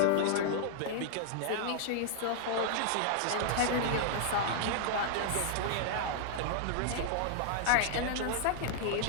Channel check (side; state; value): both; different; correlation -0.01